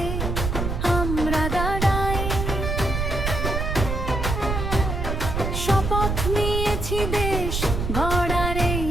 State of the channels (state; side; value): noise; right; rumble, 2 dB below the sound